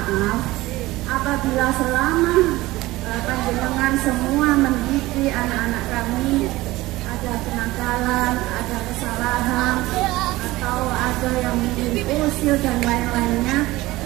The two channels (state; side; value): quieter; left; 18.7 dB